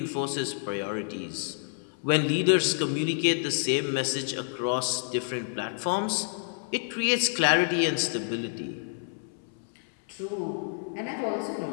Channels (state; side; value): silent; right; 59 dB below the other